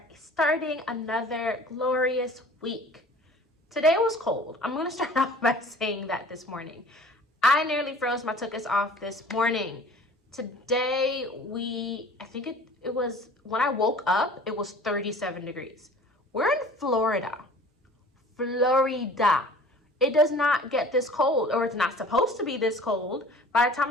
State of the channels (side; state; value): both; normal; correlation 0.46